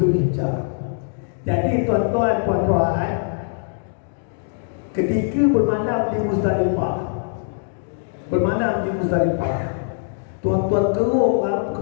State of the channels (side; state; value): right; silent; digital silence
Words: Jadi tuan-tuan, puan-puan, ketika bermalam di Muzdalifah, tuan-tuan keruk